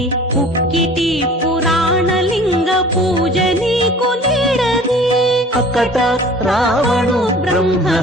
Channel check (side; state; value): both; normal; correlation 0.46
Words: పుక్కిటి పురాణలింగ పూజ నీకు నేడది. అకట రావణు బ్రహ్మ